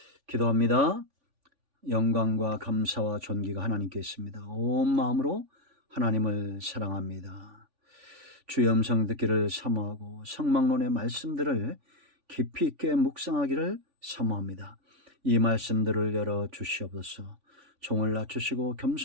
기도합니다. 영광과 감사와 존귀가 하나님께 있습니다. 온 마음으로 하나님을 사랑합니다. 주의 음성 듣기를 사모하고 성막론의 말씀들을 깊이 있게 묵상하기를 사모합니다. 이 말씀들을 열어 주시옵소서. 종을 낮추시고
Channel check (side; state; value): left; late; 3.5 ms